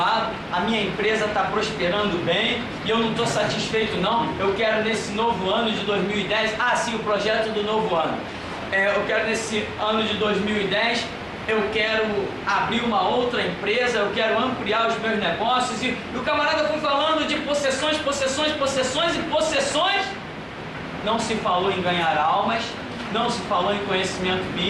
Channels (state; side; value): identical; both; correlation 1.00